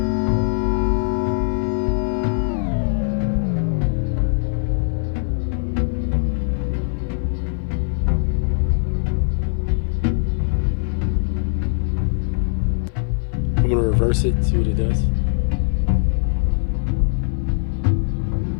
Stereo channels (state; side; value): silent; right; 57 dB below the other